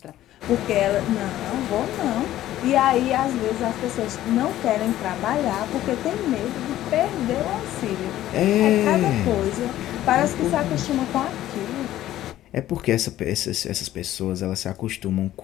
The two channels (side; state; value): right; quieter; 13.7 dB